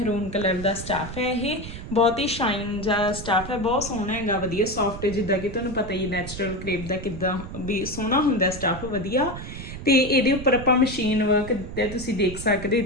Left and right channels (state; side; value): noise; right; rumble, 10 dB below the sound